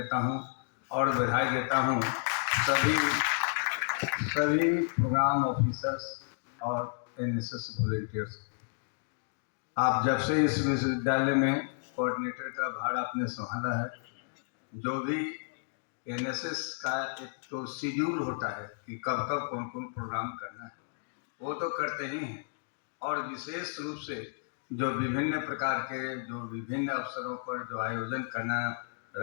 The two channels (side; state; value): right; silent; digital silence